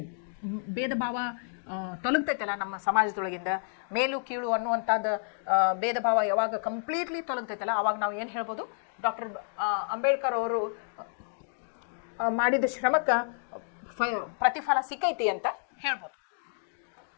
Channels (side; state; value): right; silent; digital silence